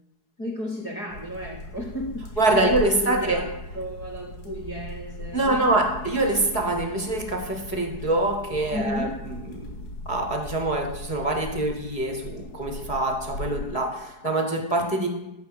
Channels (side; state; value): right; late; 4.7 ms